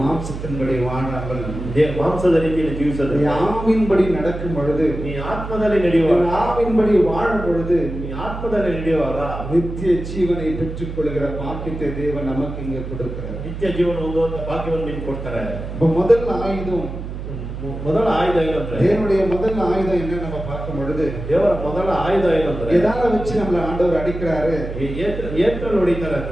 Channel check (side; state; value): right; noise; hum, 8 dB below the sound